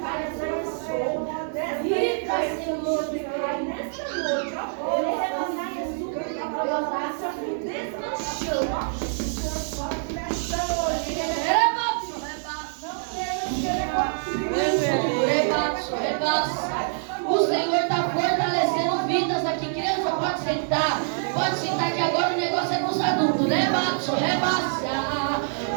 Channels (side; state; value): left; silent; 61 dB below the other